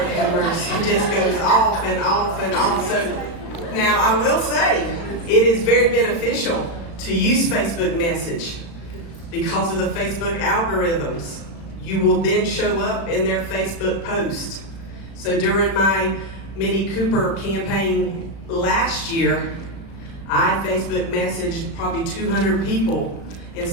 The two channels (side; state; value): right; late; 36 ms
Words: have mercy, it just goes off and off and off. So now I will say, it is very beneficial to use Facebook message because of the Facebook algorithms. You will then show up in their Facebook post. So during my Mini Cooper campaign last year, I Facebook messaged probably 200 people